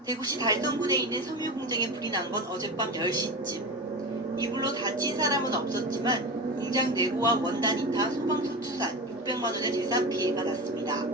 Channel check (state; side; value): normal; both; correlation 0.25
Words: 대구시 달성군에 있는 섬유 공장에 불이 난 건 어젯밤 10시쯤. 이 불로 다친 사람은 없었지만 공장 내부와 원단이 타 소방서 추산 600만 원의 재산 피해가 났습니다.